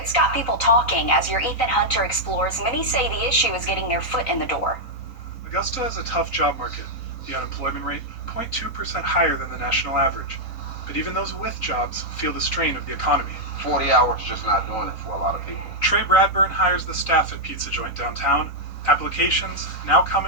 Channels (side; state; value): right; late; 3.9 ms